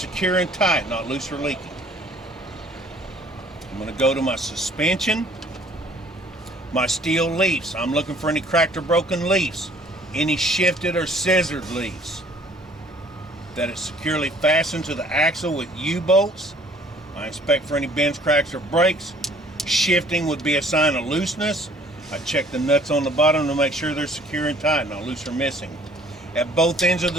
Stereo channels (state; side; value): normal; both; correlation 0.56